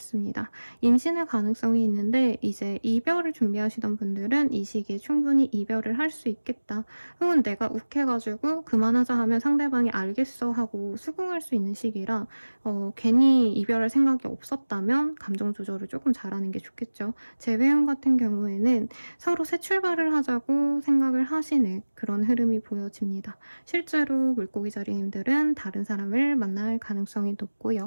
임신의 가능성이 있는데 이제 이별을 준비하시던 분들은 이 시기에 충분히 이별을 할 수 있겠다. 혹은 내가 욱해가지고 그만하자 하면 상대방이 알겠어 하고 수긍할 수 있는 시기라 괜히 이별할 생각이 없었다면 감정 조절을 조금 잘하는 게 좋겠죠. 재회원 같은 경우에는 서로 새 출발을 하자고 생각을 하시는 그런 흐름이 보여집니다. 실제로 물고기 자리님들은 다른 사람을 만날 가능성이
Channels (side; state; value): both; inverted; correlation -1.00